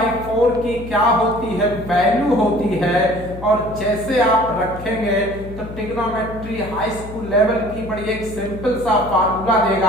4 की क्या होती है? वैल्यू होती है। और जैसे आप रखेंगे तो ट्रिग्नोमेट्री हाई स्कूल लेवल की बड़ी एक सिंपल सा फार्मूला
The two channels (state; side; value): noise; left; hum, 12 dB below the sound